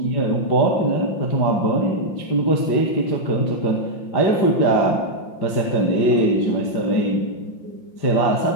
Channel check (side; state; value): right; late; 5.6 ms